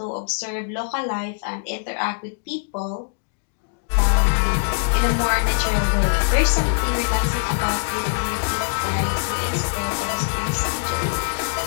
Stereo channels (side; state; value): right; silent; digital silence